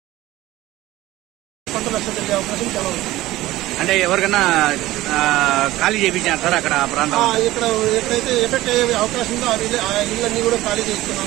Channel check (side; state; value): left; quieter; 16.8 dB